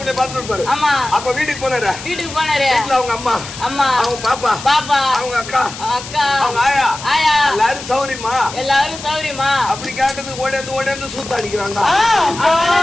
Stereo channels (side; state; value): left; noise; hiss, 12 dB below the sound